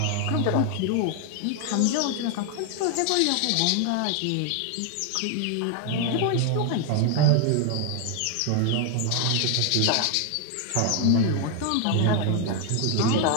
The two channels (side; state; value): both; different; correlation 0.01